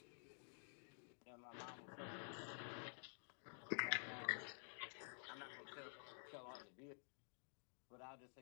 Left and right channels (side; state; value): right; silent; digital silence